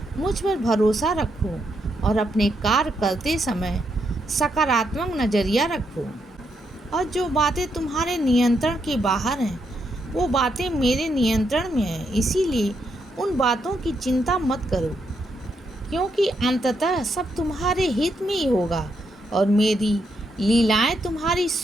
मुझ पर भरोसा रखो और अपने कार्य करते समय सकारात्मक नज़रिया रखो। और जो बातें तुम्हारे नियंत्रण के बाहर हैं वो बातें मेरे नियंत्रण में हैं। इसीलिए उन बातों की चिंता मत करो, क्योंकि अंततः सब तुम्हारे हित में ही होगा और मेरी लीलाएं तुम्हारी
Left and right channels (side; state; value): both; normal; correlation 0.79